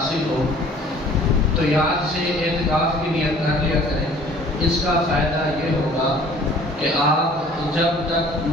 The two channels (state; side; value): normal; both; correlation 0.52